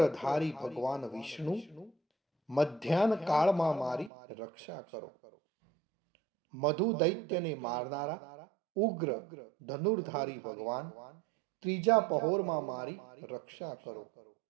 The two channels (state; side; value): drops out; left; at 4.1 s